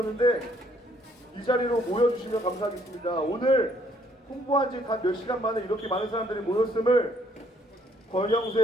이 자리로 모여주시면 감사하겠습니다. 오늘 홍보한 지 단 몇 시간 만에 이렇게 많은 사람들이 모였음을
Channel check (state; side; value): normal; both; correlation 0.65